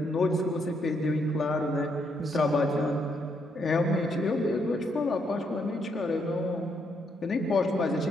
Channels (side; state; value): both; normal; correlation 0.75